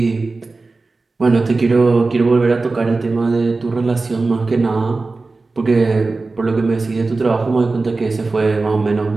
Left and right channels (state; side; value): quieter; left; 3.7 dB